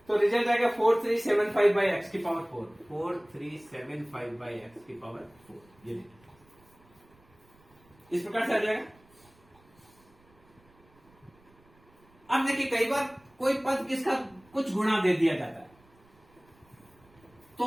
तो रिजल्ट आएगा 4375 बाई एक्स की पावर 4, 4375 बाई एक्स की पावर 4। ये देखिए इस प्रकार से आ जाएगा। अब देखिए कई बार कोई पद किसका कुछ गुणा दे दिया जाता है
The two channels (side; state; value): right; noise; rumble, 30 dB below the sound